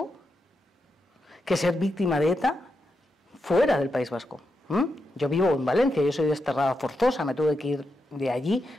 que ser víctima de ETA fuera del País Vasco. Yo vivo en Valencia, yo soy desterrada forzosa, me tuve que ir de allí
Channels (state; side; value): normal; both; correlation 0.85